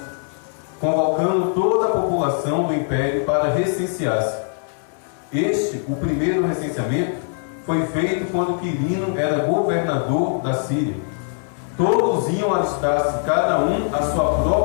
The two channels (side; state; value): right; silent; digital silence